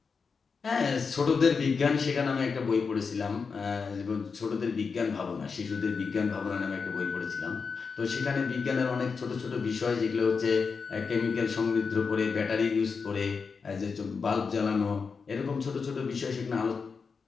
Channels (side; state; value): right; quieter; 5.2 dB